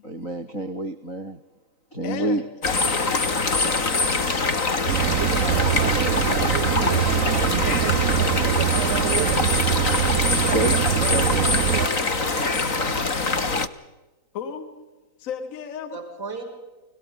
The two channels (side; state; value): right; late; 3.9 ms